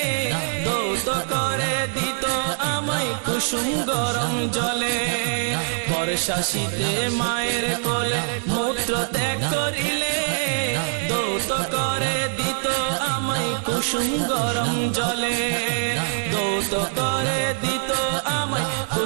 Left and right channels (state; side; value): silent; left; digital silence